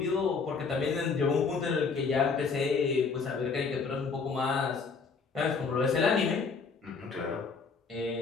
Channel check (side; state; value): right; quieter; 5.0 dB